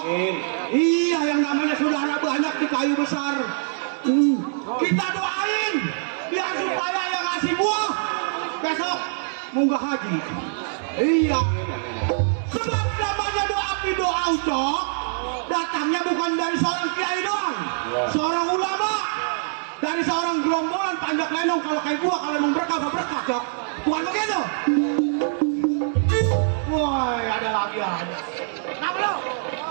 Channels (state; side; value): silent; left; digital silence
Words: Iya, yang namanya saudara banyak di kayu besar. Kita doain biar supaya yang ngasih buah besok munggah haji. Iya. Sebab namanya doa doa Ucok datangnya bukan dari seorang kiai doang, seorang ulama, dari seorang gerombolan panjat lenong. Kalau kayak gua kalau mau berkah berkah Cok, bukan begitu? Woi, ada lagi aja. Kenapa lo?